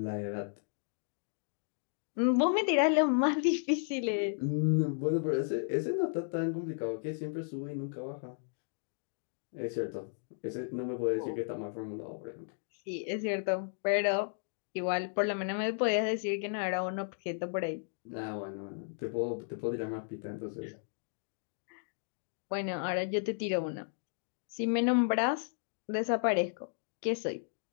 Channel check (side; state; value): right; silent; digital silence